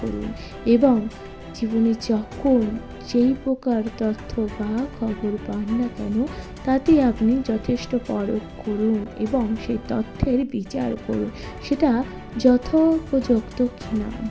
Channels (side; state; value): both; identical; correlation 1.00